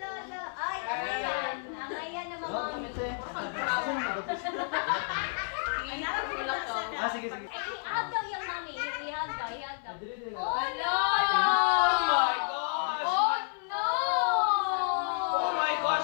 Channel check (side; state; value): right; silent; 57 dB below the other